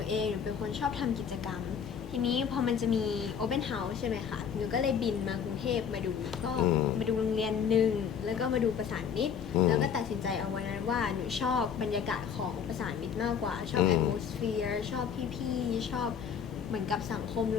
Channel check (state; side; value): quieter; right; 7.5 dB